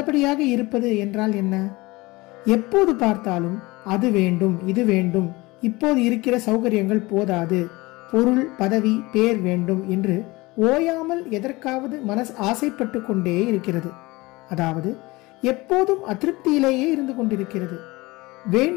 இருப்பது என்றால் என்ன? எப்போது பார்த்தாலும் அது வேண்டும், இது வேண்டும், இப்போது இருக்கிற சௌகரியங்கள் போதாது, பொருள் பதவி பேர் வேண்டும் என்று ஓயாமல் எதற்காவது மனஸ் ஆசைப்பட்டு கொண்டே இருக்கிறது. அதாவது எப்போதும் அதிருப்தியிலேயே இருந்து கொண்டிருக்கிறது.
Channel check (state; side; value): quieter; right; 22.0 dB